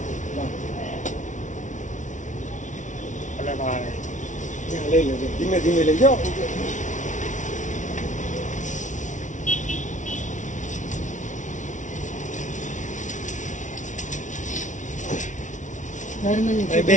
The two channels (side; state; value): right; late; 0.37 ms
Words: લઈ લેજો ધીમે ધીમે લઈ જાઓ બે